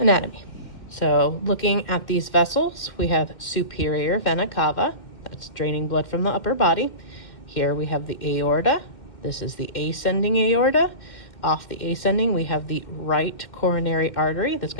So looking at these vessels, we have superior vena cava, that's draining blood from the upper body. Here we have the aorta. This is the ascending aorta. Off the ascending, we have the right coronary artery that's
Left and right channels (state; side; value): late; right; 2.1 ms